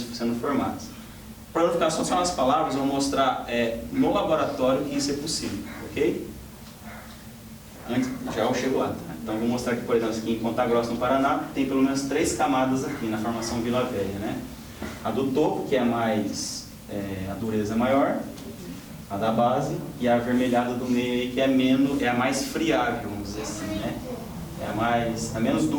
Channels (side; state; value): both; identical; correlation 1.00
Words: formadas. Para não ficar só nas palavras, eu vou mostrar no laboratório que isso é possível, ok? Antes, já eu chego lá, tá? Então vou mostrar aqui, por exemplo, aqui em Ponta Grossa, no Paraná, tem pelo menos 3 camadas aqui na formação Vila Velha, né? A do topo, que é mais, a dureza é maior, a da base, e a avermelhada do meio aí, que é a mais friável, vamos dizer assim, né? É a menos